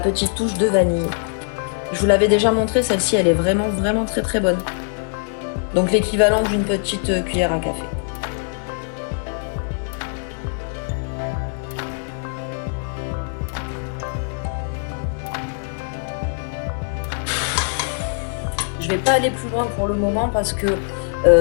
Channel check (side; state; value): right; silent; digital silence